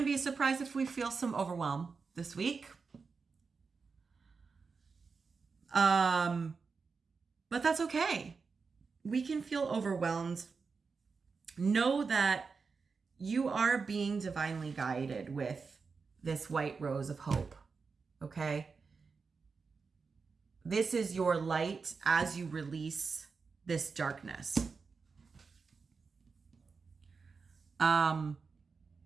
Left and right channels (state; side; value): quieter; left; 4.9 dB